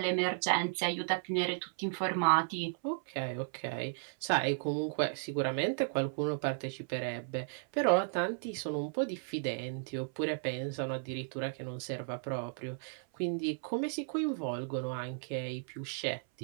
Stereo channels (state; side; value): silent; left; 55 dB below the other